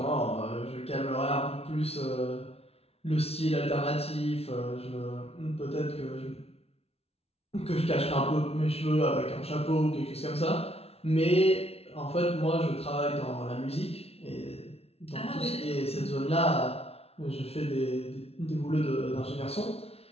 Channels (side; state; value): right; late; 0.30 ms